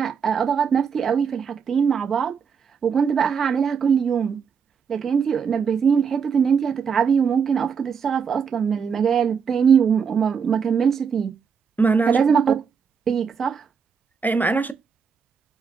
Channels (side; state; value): left; quieter; 6.4 dB